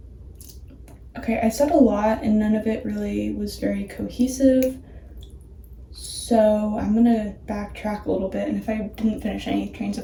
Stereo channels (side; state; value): both; identical; correlation 1.00